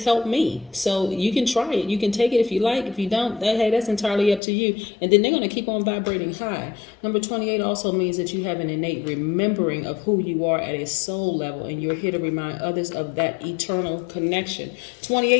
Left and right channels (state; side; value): drops out; right; at 4.4 s